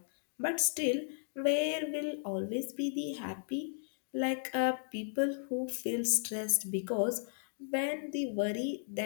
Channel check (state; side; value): silent; right; digital silence